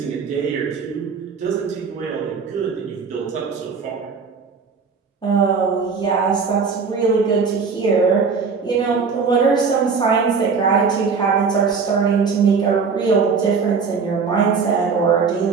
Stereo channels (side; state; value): left; quieter; 5.3 dB